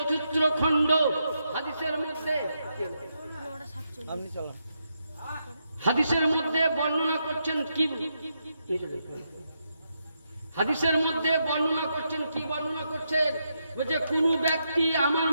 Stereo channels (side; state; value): both; inverted; correlation -0.82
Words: খণ্ড হাদিসের মধ্যে আপনি চলেন। হাদিসের মধ্যে বর্ণনা করছেন কি? হাদিসের মধ্যে বর্ণনা করছেন কি? বর্ণনা করছেন যে কোন ব্যক্তি আমার